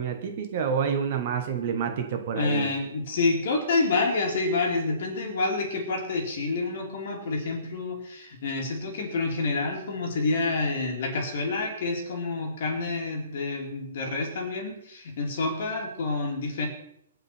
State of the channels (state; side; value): inverted; both; correlation -0.55